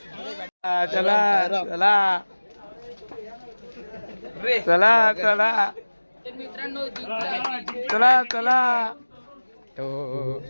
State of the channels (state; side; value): inverted; both; correlation -1.00